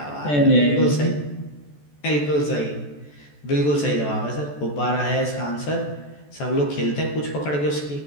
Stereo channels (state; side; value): late; right; 14 ms